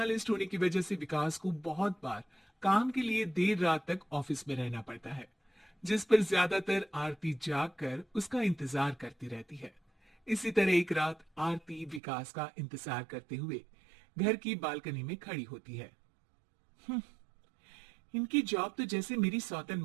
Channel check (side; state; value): left; drops out; at 12.0 s